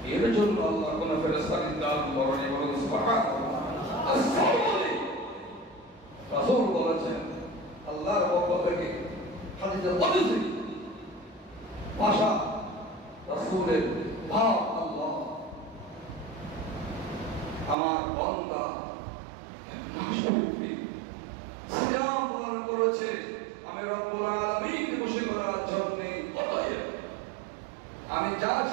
এর জন্য আল্লাহ কোন ফেরেশতা নির্ধারণ করেন। বলুন সুবহানাল্লাহ। রাসূল বলেছেন আল্লাহর পক্ষ থেকে হাদিসে কুদসি ভাষা, রাসূলের ভাব, আল্লাহ আমার বান্দা সিয়াম পালন করেছে, আমি রব্বুল আলামিন খুশি করার জন্য, অতএব আমি যা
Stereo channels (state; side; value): drops out; left; at 17.8 s